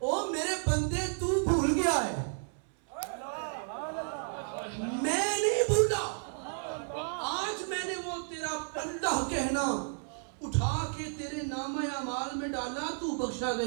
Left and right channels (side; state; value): left; silent; 56 dB below the other